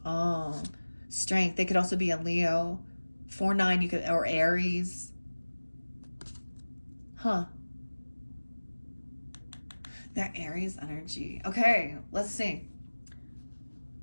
Oh, strength. They could also be a Leo. 4-9, or Aries. Huh. That Aries energy. Okay, let's see.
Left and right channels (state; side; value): inverted; both; correlation -1.00